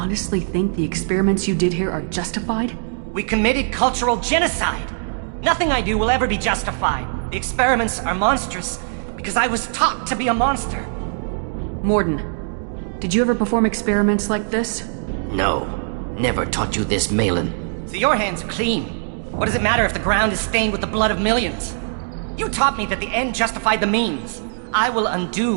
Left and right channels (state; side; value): silent; left; digital silence